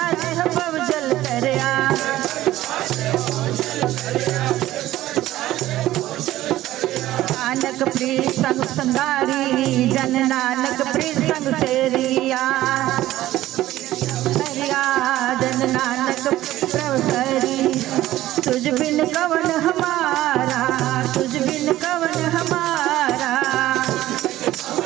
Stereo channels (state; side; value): quieter; left; 14.9 dB